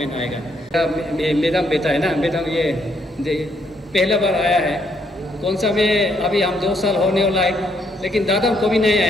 आएगा। मैडम बेटा है ना, मैडम ये पहला बार आया है, कौन सा में अभी हम 2 साल होने वाला है, लेकिन दादम को भी नहीं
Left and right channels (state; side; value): normal; both; correlation 0.72